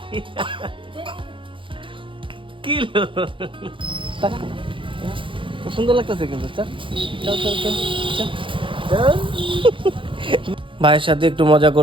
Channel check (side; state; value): left; late; 0.25 ms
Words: কি সুন্দর লাগতেছে কিন্তু। ভাইয়ের সাথে একটু মজা